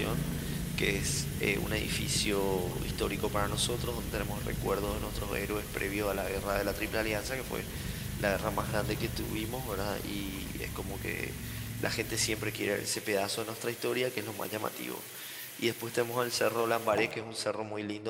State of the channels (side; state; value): both; identical; correlation 1.00